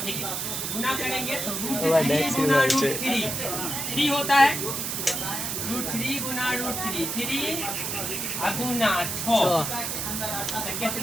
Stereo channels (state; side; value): noise; right; hiss, 2 dB below the sound